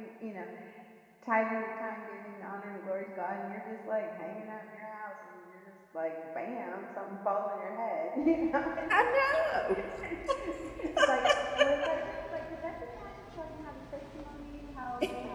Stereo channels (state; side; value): identical; both; correlation 1.00